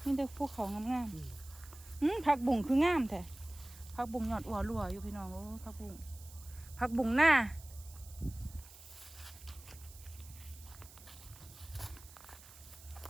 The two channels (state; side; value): noise; right; hiss, 19 dB below the sound